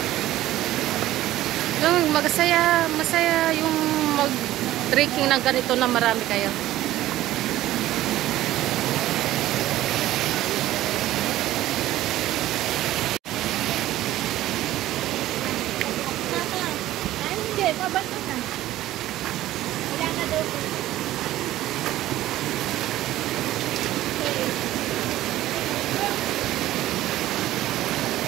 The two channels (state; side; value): quieter; left; 14.8 dB